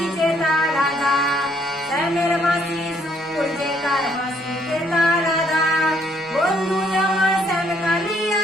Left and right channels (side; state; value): both; normal; correlation 0.67